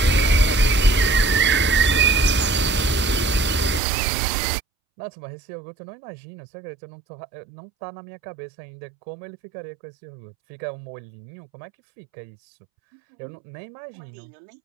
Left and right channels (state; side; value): drops out; left; at 3.8 s